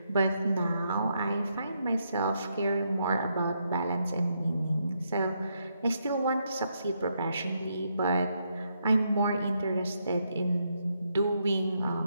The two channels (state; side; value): inverted; both; correlation -0.78